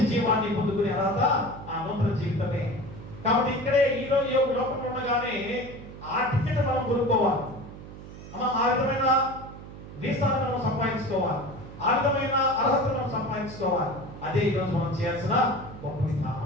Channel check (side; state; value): right; noise; hum, 14 dB below the sound